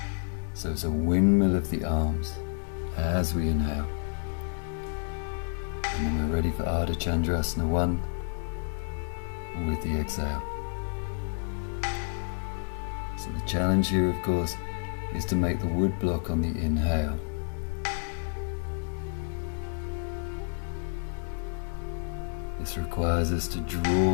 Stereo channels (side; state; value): right; silent; 58 dB below the other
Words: So it's a windmill of the arms as we inhale, and then we're ready for Ardha Chandrasana 1 with the exhale. So the challenge here, of course, is to make the wood block on the inhale. This requires us to